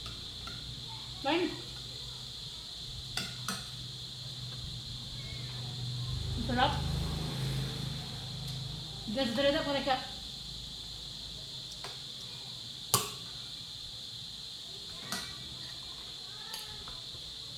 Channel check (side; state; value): both; identical; correlation 1.00